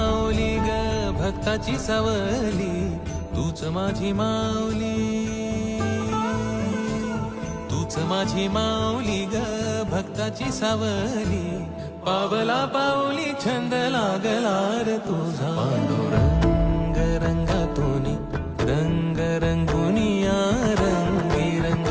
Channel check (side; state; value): both; identical; correlation 1.00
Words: ग भक्ताची सावली तूच माझी माऊली तूच माझी माऊली ग भक्ताची सावली पावला पाऊली छंद लागला रे तुझा पांडुरंग रंगातूनी रंग रंगुनिया रंग